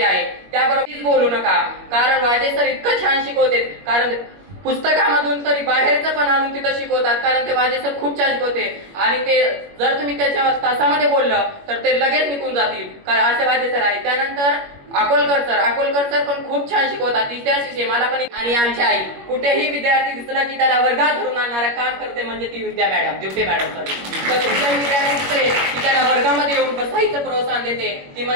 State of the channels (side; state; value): left; late; 21 ms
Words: आहे. त्याबरोबर बोलू नका, कारण वाजे सर इतकं छान शिकवते, कारण पुस्तकामधून तरी बाहेरचं पण आणून तिथं शिकवतात, कारण ते वाजे सर खूप छान शिकवते. आणि ते जर तुम्ही त्याच्या तासामध्ये बोललं तर ते लगेच निघून जातील, कारण असे वाजे सर आहे. त्यानंतर अकोलकर सर पण खूप छान शिकवतात, इतिहास विषय मला पण. आणि आमची आई, कुठेही विद्यार्थी दिसला की त्याला वर्गात धरून आणणारा काम करते म्हणजे ती ड्युटे मॅडम सर. तर कुठल्याही विद्यार्थी दिसले की त्याला वर्गामध्ये येऊन बसायचं प्रोत्साहन देते, ती